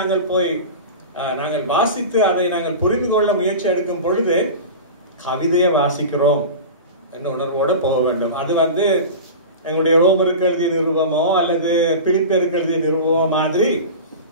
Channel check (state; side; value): inverted; both; correlation -0.30